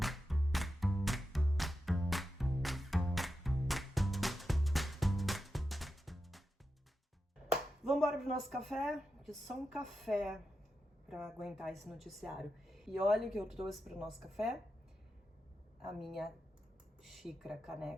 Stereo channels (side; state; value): both; normal; correlation 0.90